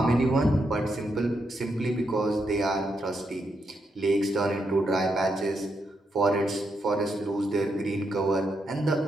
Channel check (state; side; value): normal; both; correlation 0.81